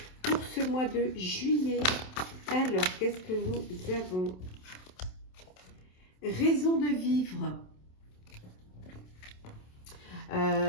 pour ce mois de juillet. Alors, qu'est-ce que nous avons? Raison de vivre.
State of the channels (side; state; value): right; late; 27 ms